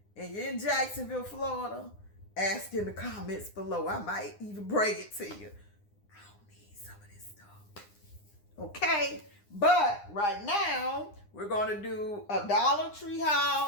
and you're in Jacksonville, Florida, ask in the comments below. I might even bring it to you. I don't need some of this stuff. Okay? But right now, we're going to do a Dollar Tree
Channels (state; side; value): late; right; 9.8 ms